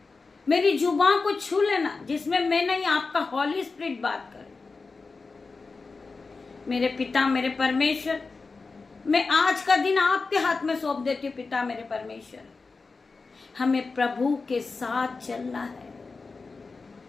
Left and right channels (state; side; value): quieter; right; 4.2 dB